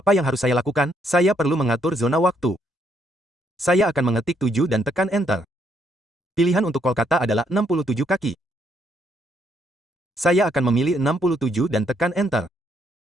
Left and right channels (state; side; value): normal; both; correlation 0.72